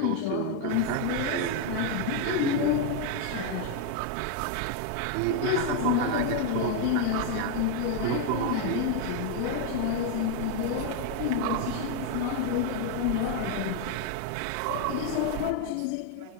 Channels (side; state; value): both; different; correlation 0.01